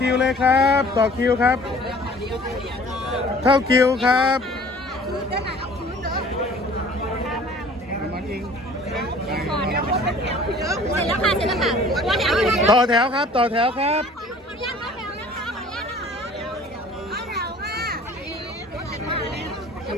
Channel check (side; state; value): both; normal; correlation 0.49